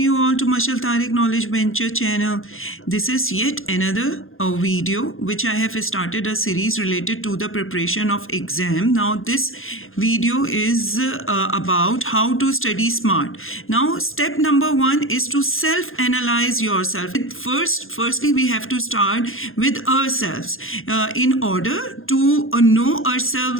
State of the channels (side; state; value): right; late; 0.60 ms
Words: all to Mashal Tariq Knowledge Venture channel. This is yet another video which I have started a series related to the preparation of exam. Now this video is about how to study smart. Now step number 1 is to self-analyze yourself. Firstly we have to start with ourselves in order to know